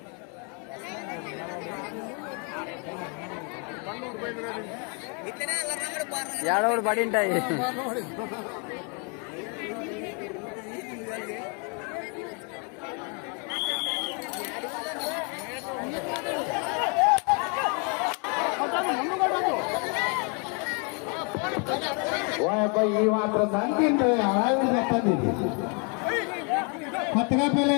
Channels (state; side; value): quieter; right; 36.2 dB